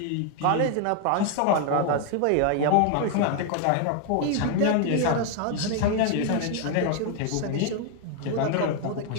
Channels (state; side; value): different; both; correlation 0.00